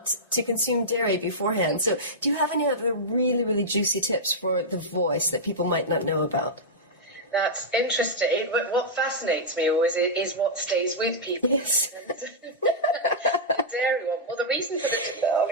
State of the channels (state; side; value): normal; both; correlation -0.10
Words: to consume dairy beforehand. So do you have any other really, really juicy tips for the voice that people might not know about? That's interesting. What fascinates me always is what stays with people. Yes. The dairy one. Well, I'll